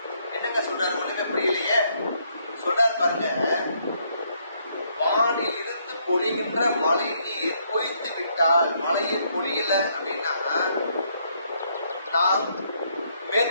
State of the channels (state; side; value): inverted; both; correlation -0.71